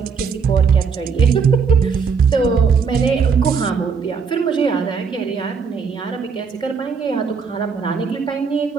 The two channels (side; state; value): left; quieter; 5.7 dB